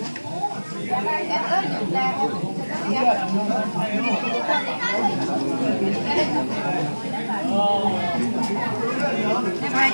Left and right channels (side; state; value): both; inverted; correlation -1.00